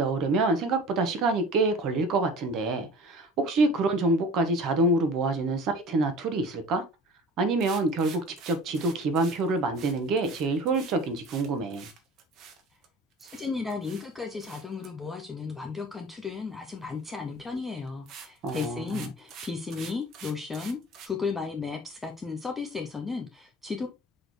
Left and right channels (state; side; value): normal; both; correlation 0.42